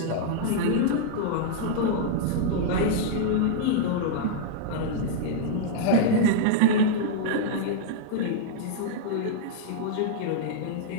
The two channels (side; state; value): both; different; correlation -0.02